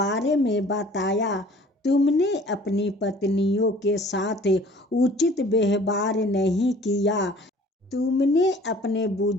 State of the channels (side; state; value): both; normal; correlation 0.50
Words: में बताया। तुमने अपनी पत्नियों के साथ उचित व्यवहार नहीं किया। तुमने अपने